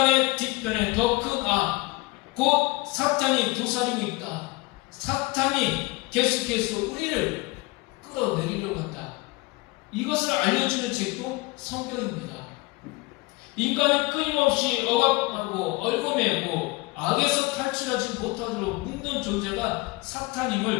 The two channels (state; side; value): quieter; right; 23.2 dB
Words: 뒤편에 더 큰 악, 곧 사탄이 도사리고 있다. 사탄이 계속해서 우리를 끌어내리려고 한다. 이것을 알려주는 책도 성경입니다. 인간을 끊임없이 억압하고 얽어매고 악에서 탈출하지 못하도록 묶는 존재가